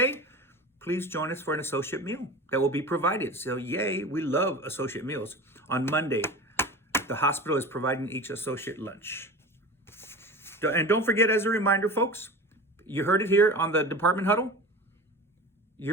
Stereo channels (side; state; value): both; normal; correlation 0.32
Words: Please join us for an associate meal that will be provided. So yay, we love associate meals. On Monday, the hospital is providing each associate lunch. And don't forget, as a reminder, folks, you heard it here on the department huddle.